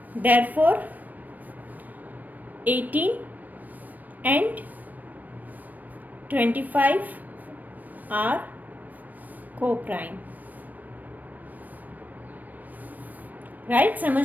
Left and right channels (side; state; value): left; late; 0.083 ms